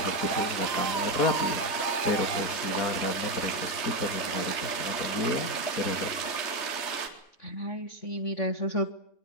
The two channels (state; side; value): late; right; 3.2 ms